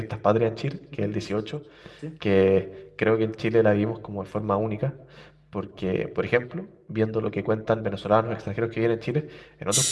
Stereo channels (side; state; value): both; identical; correlation 1.00